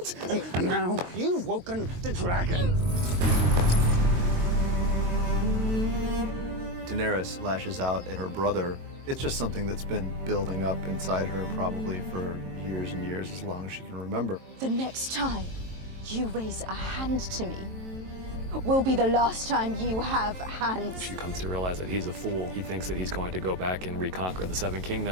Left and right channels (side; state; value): left; late; 23 ms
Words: and now you've woken the dragon. Daenerys lashes out at her brother. It's just something that's been building up inside her probably for years and years, as long as she can remember. The next time you raise a hand to me will be the last time you have hands. She comes to realize that he's a fool. He thinks that he's going to go back and reconquer the Seven